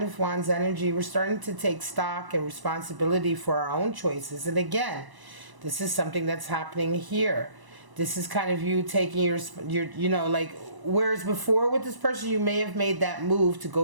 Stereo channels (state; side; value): late; left; 1.0 ms